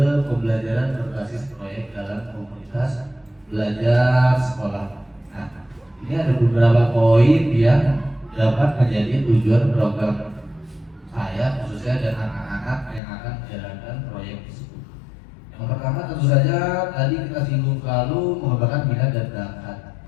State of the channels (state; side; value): drops out; right; at 13.0 s